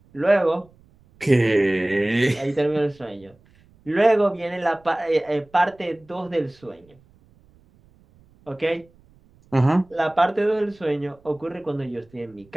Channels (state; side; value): noise; right; rumble, 30 dB below the sound